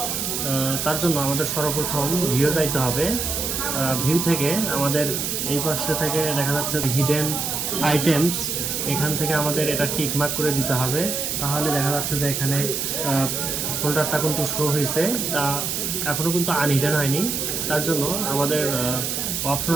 তার জন্য আমাদের সর্বপ্রথম ভিউ যাইতে হবে। ভিউ থেকে আমাদের এই পাশে থেকে দেখা যাচ্ছে হিডেন আইটেমস, এখান থেকে আমাদের এটা টিকমার্ক করে দিতে হবে। তাহলে দেখা যাচ্ছে যে এখানে ফোল্ডারটা কিন্তু শো হয়েছে, তা এখনও কিন্তু আনহিডেন হয়নি। তার জন্য আমাদের অপশন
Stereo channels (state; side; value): noise; right; hiss, 2 dB below the sound